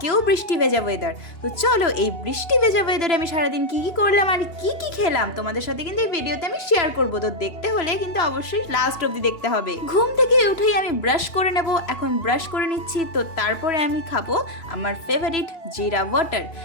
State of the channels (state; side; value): late; right; 2.8 ms